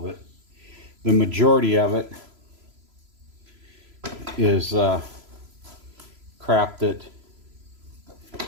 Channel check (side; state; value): left; late; 3.0 ms